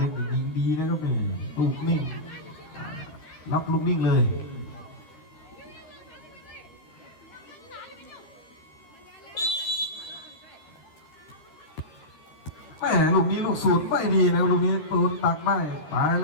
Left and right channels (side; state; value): right; late; 13 ms